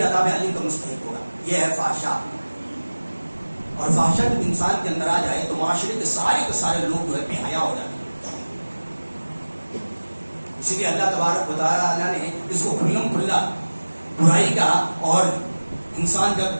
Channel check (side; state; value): both; inverted; correlation -1.00